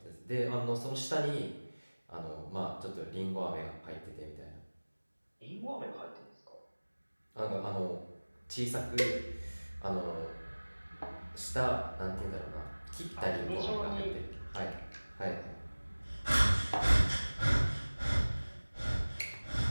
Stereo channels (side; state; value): both; inverted; correlation -1.00